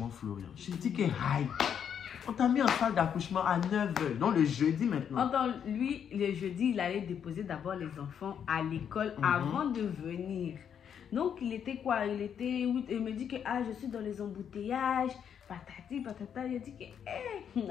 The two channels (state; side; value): quieter; right; 8.2 dB